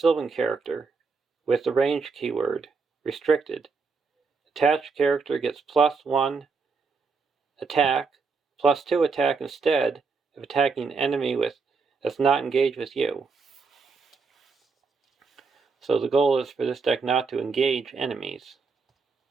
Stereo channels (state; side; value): quieter; left; 4.8 dB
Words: character with the range keyword, restricted. Attached character gets +1 attack, +2 attack instead if attacking enemy that's not engaged with you. So the goal is for this deck not to engage enemies.